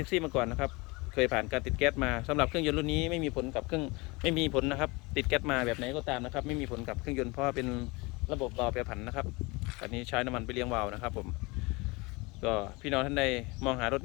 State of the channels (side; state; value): right; quieter; 25.4 dB